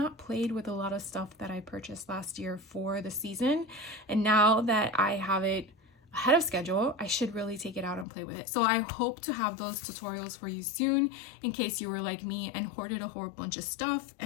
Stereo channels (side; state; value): right; drops out; at 8.1 s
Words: played with a lot of stuff that I purchased last year for the season. And now that I have it ahead of schedule, I should really take it out and play with it. So I hope to have those tutorials for you soon, in case you were like me and hoarded a whole bunch of stuff